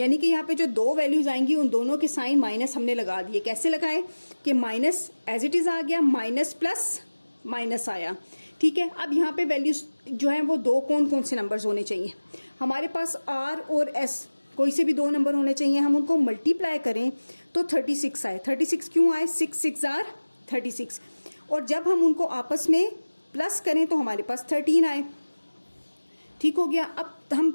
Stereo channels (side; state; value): both; inverted; correlation -1.00